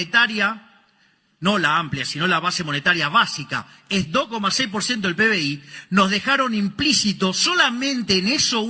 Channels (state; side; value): identical; both; correlation 1.00